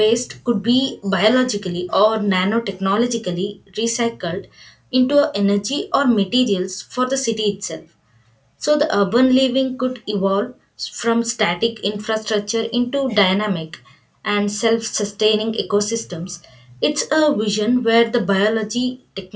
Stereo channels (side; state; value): both; identical; correlation 1.00